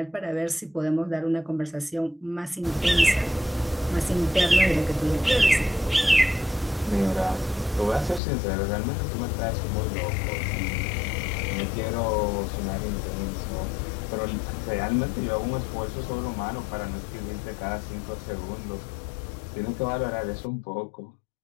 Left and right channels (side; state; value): right; drops out; at 8.2 s